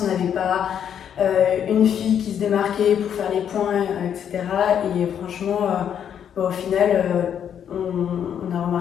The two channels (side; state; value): right; quieter; 8.8 dB